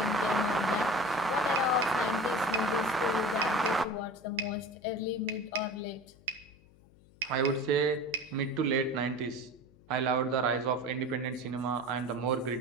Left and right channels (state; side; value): noise; left; hum, 27 dB below the sound